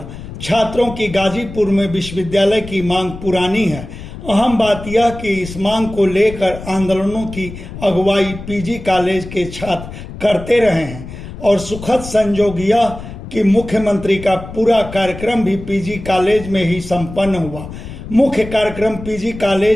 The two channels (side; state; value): left; noise; rumble, 12 dB below the sound